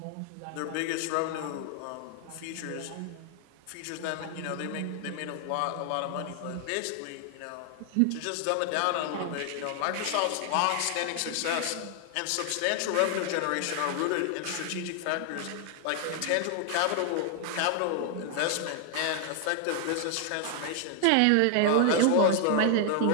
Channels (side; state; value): both; different; correlation 0.00